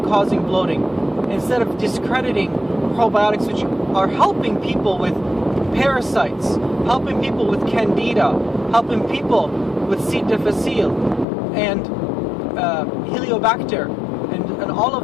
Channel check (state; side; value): drops out; right; at 11.2 s